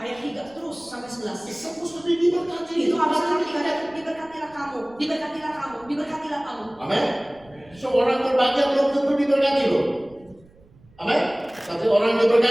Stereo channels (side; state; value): right; noise; rumble, 28 dB below the sound